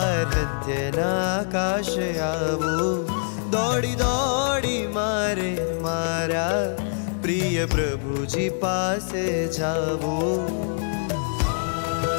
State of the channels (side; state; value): right; silent; digital silence